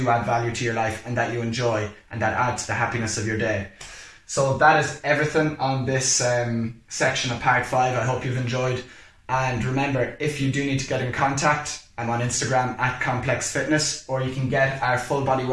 add value to your life and that you enjoy and that add to the happiness of your day. So that is everything on this section of part 5. I hope you've enjoyed. And remember, if you do need to get in contact, I'm on Instagram at Complex Fitness, or you can get our Full Body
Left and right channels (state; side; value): identical; both; correlation 1.00